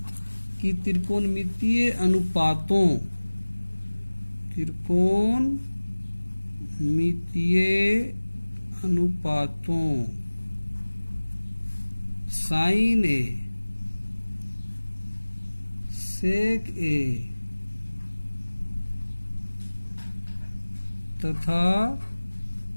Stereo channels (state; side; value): inverted; both; correlation -1.00